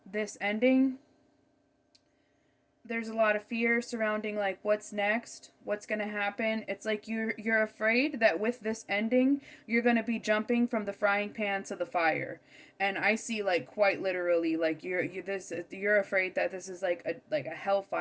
this ending. There's a lot of fear surrounding what's next, what's going to happen. It's like you're afraid that with this ending, you're going to be jumping from the frying pan to the fire. And I see quite literally you're afraid that this is like a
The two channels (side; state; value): both; identical; correlation 1.00